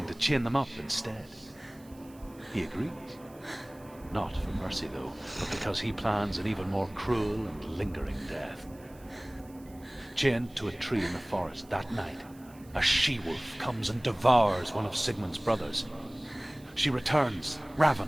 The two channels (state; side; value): noise; right; hiss, 26 dB below the sound